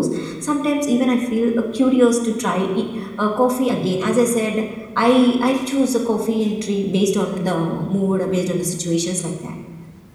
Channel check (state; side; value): identical; both; correlation 1.00